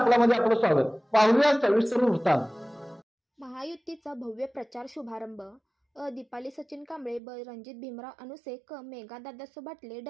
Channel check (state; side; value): drops out; left; at 7.2 s